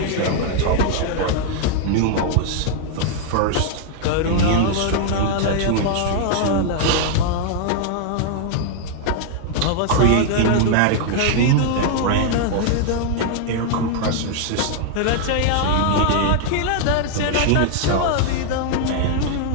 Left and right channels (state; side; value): different; both; correlation 0.00